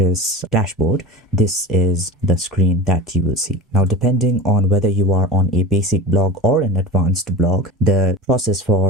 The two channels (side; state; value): both; normal; correlation 0.31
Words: dashboard, this is the screen that you will see. Now, depending on whether you are on a basic blog or an advanced blog, the process